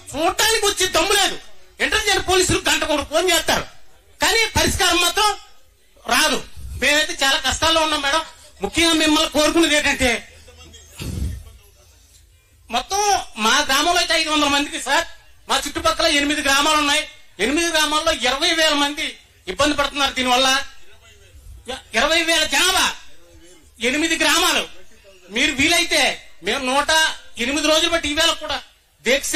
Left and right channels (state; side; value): identical; both; correlation 1.00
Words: చూడటానికి వచ్చి దమ్ము లేదు. ఇంటెలిజెంట్ పోలీసులు గంట కూడా ఫోన్ చేస్తారు, కానీ పరిష్కారం మాత్రం రాదు. మేమైతే చాలా కష్టాల్లో ఉన్నాం మేడం. ముఖ్యంగా మిమ్మల్ని కోరుకునేది ఏంటంటే, మొత్తం మా గ్రామంలో అయితే 500 మందికి సార్, మా చుట్టుపక్కల 8 గ్రామాలు ఉన్నాయి. 8 గ్రామాల్లో 20,000 మంది ఇబ్బంది పడుతున్నారు దీనివల్ల. 20,000 జనాభా, 8 గ్రామాలు. మీరు వీలైతే మేము 108 రోజులు బట్టి ఈవేళ కూడా దీక్ష